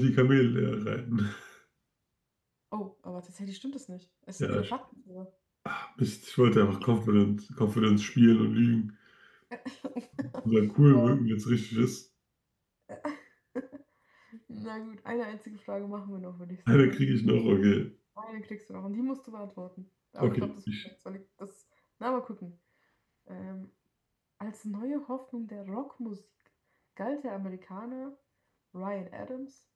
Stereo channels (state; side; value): identical; both; correlation 1.00